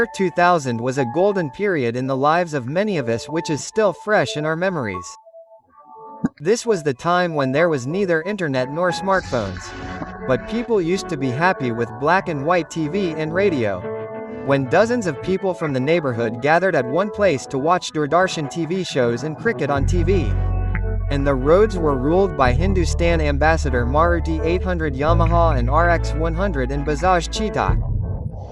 2000 was a golden period in the lives of many of us, which is still fresh in our memories. This was the time when there was neither internet nor smartphones. But people used to be happy with black and white TV and radio. When dozens of people from the neighborhood gathered at one place to watch Doordarshan TV shows and cricket on TV. And the roads were ruled by Hindustan Ambassador Maruti 800 Yamaha and RX 100 and Bajaj Cheetah.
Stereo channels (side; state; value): both; identical; correlation 1.00